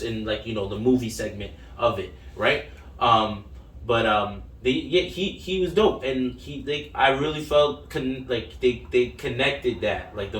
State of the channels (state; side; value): identical; both; correlation 1.00